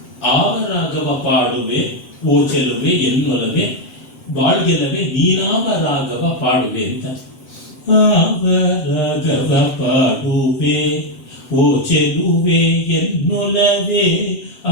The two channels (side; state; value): right; late; 8.2 ms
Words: ಆವ ರಾಗವ ಪಾಡುವೆ ಓ ಚೆಲುವೆ ಎನ್ನೊಲವೆ ಬಾಳ್ಗೆಲವೆ ನೀನಾವ ರಾಗವ ಪಾಡುವೆ ಅಂತ. ಆವ ರಾಗವ ಪಾಡುವೆ ಓ ಚೆಲುವೆ ಎನ್ನೊಲವೆ